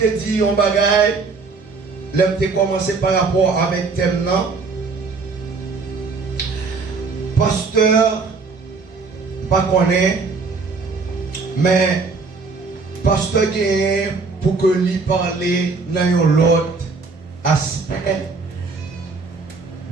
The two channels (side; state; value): left; quieter; 4.4 dB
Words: dit un bagage l'homme te commencé par rapport avec thème non pasteur pas connaît mais pasteur gagne pour que lui parler dans l'autre aspect